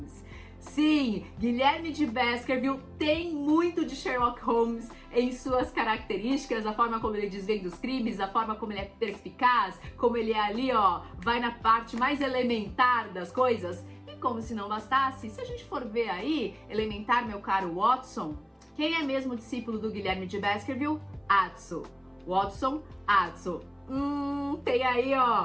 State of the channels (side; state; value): both; identical; correlation 1.00